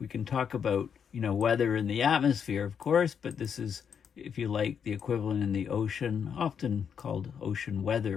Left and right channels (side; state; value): right; quieter; 7.4 dB